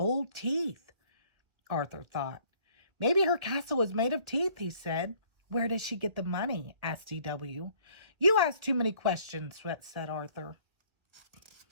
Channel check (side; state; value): left; late; 1.7 ms